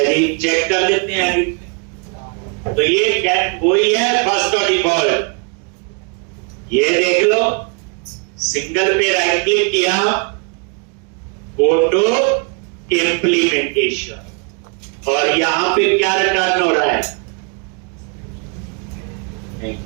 जी, चेक कर लेते हैं अभी। तो ये वही है फर्स्ट और डिफॉल्ट। ये देख लो, सिंगल पे राइट क्लिक किया, फोटो इंप्लीमेंटेशन, और यहां पे क्या रिटर्न हो रहा है, नहीं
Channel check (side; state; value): left; quieter; 36.4 dB